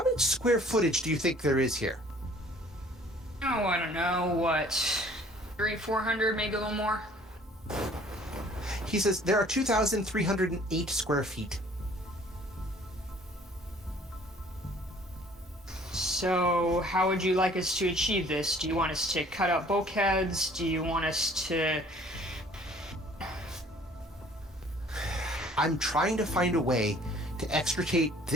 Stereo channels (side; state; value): both; normal; correlation 0.54